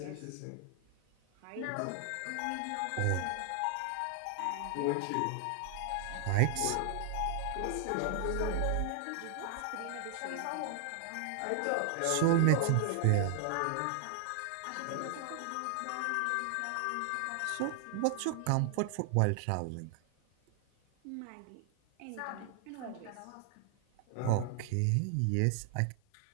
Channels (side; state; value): both; different; correlation 0.00